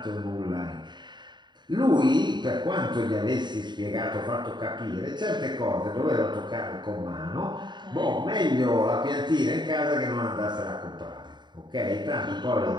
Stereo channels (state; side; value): late; left; 0.22 ms